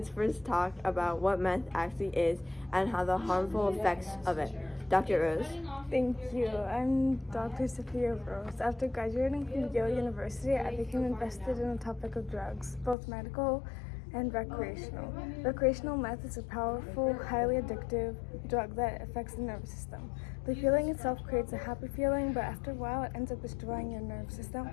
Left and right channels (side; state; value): right; drops out; at 13.0 s